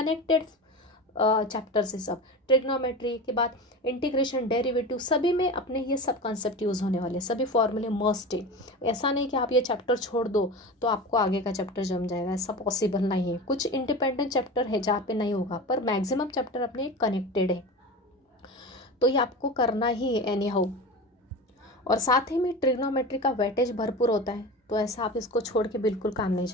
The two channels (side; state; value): both; normal; correlation 0.29